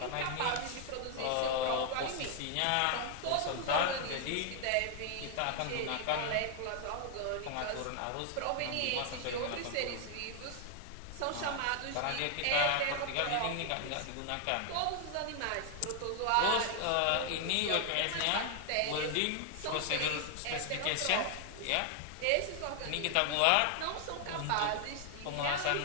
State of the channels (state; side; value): different; both; correlation 0.00